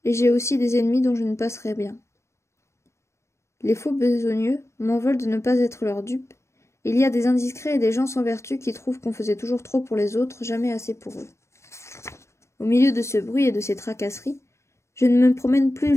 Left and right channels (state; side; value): late; right; 0.13 ms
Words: et j'ai aussi des ennemis dont je ne passerai bien. Les faux besogneux m'en veulent de ne pas être leur dupe. Il y a des indiscrets et des gens sans vertu qui trouvent qu'on faisait toujours trop pour les autres, jamais assez pour eux. Au milieu de ce bruit et de ces tracasseries, je ne me promène plus